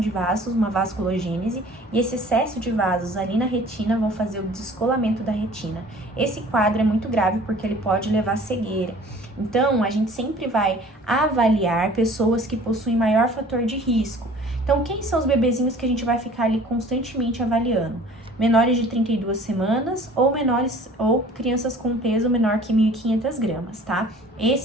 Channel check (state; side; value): normal; both; correlation 0.49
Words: vasos, uma vasculogênese, e esse excesso de vasos ali na retina vão fazer o descolamento da retina. Esse quadro é muito grave porque ele pode levar à cegueira. Então, a gente sempre vai avaliar pessoas que possuem maior fator de risco. Então, quem são os bebezinhos que a gente vai ficar ali constantemente avaliando? Menores de 32 semanas ou crianças com peso menor que 1.500 gramas, tá?